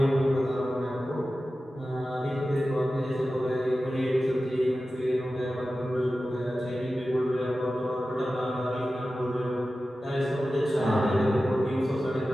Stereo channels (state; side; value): normal; both; correlation 0.94